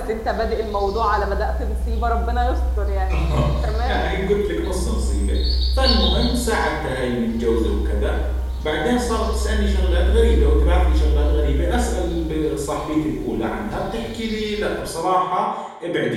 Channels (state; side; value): identical; both; correlation 1.00